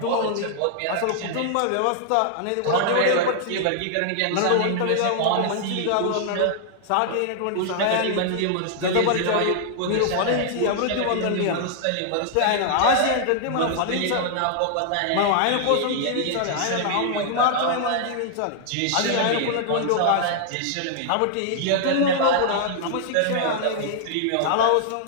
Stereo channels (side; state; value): both; different; correlation -0.01